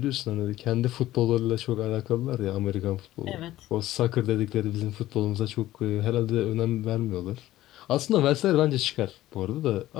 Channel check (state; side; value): quieter; right; 15.0 dB